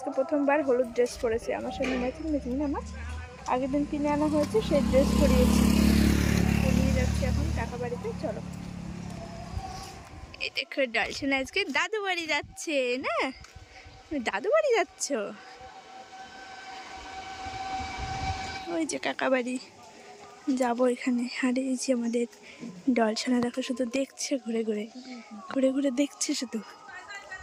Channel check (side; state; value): both; identical; correlation 1.00